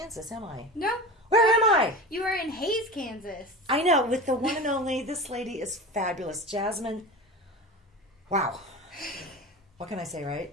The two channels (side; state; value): both; normal; correlation 0.31